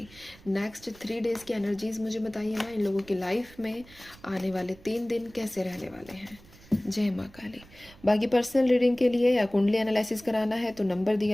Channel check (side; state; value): right; noise; rumble, 23 dB below the sound